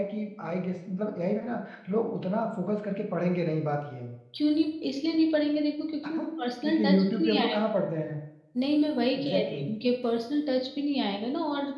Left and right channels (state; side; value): identical; both; correlation 1.00